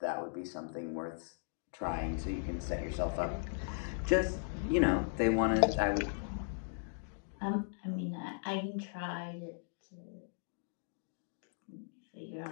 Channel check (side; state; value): right; silent; digital silence